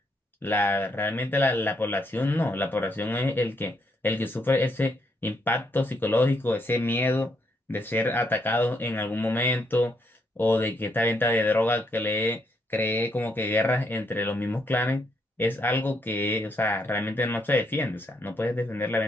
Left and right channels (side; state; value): both; normal; correlation 0.76